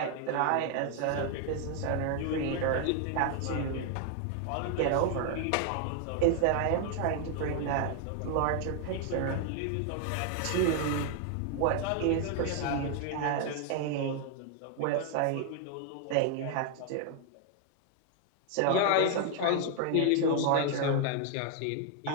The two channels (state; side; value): different; both; correlation 0.00